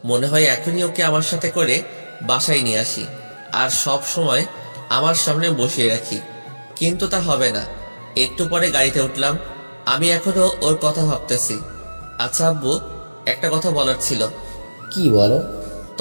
মনে হয় এখনই ওকে আমার সাথে করে বাসায় নিয়ে আসি, আর সব সময় আমার সামনে বসিয়ে রাখি। কিন্তু তা হবে না। একটু পরে গাড়িতে উঠলাম। আমি এখনো ওর কথা ভাবতেছি। আচ্ছা আব্বু, একটা কথা বলার ছিল। কি বলো?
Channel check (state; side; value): inverted; both; correlation -1.00